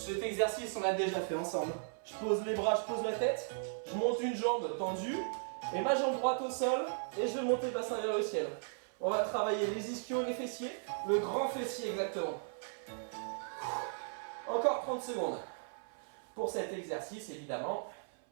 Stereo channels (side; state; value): left; silent; 53 dB below the other